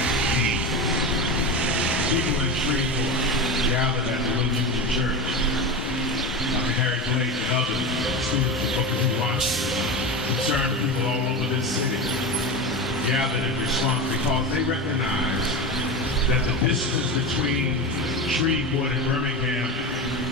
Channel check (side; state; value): both; normal; correlation 0.22